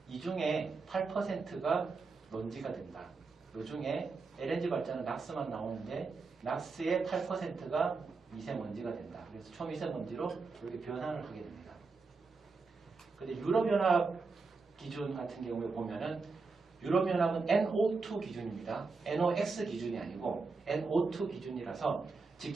이 중에 8%가 먼지가 된다. 이 중에 LNG 발전은 낙스만 나오는데 낙스의 8%가 미세먼지가 된다. 그래서 초미세먼지로 이렇게 변환을 하게 됩니다. 근데 유럽연합 기준 같은 경우에 보면은 유럽연합은 NO2 기준입니다. NOx 기준이 아니고 NO2 기준이라서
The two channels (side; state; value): left; quieter; 4.3 dB